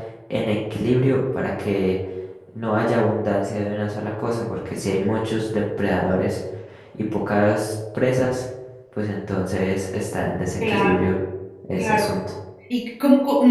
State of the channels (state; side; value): identical; both; correlation 1.00